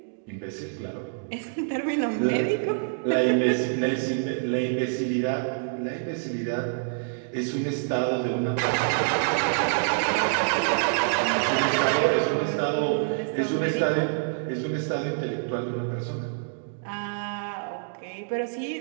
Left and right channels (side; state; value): left; silent; digital silence